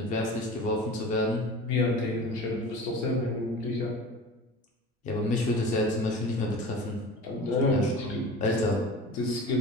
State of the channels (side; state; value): both; normal; correlation 0.36